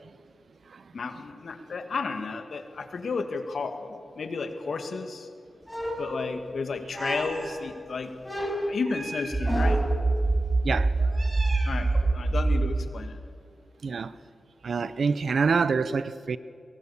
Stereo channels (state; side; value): normal; both; correlation 0.92